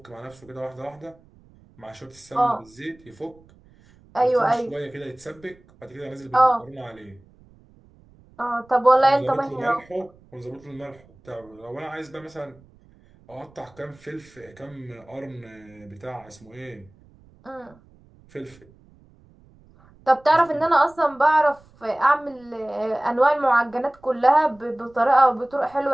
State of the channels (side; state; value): right; noise; rumble, 28 dB below the sound